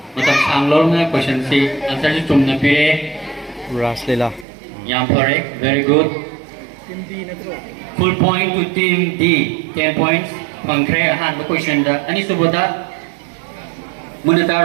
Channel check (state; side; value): drops out; left; at 4.5 s